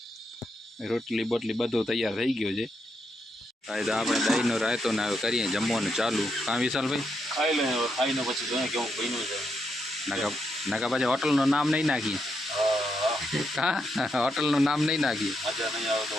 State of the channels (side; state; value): both; normal; correlation 0.81